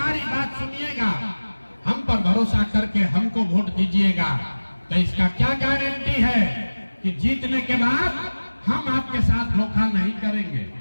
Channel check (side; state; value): both; inverted; correlation -1.00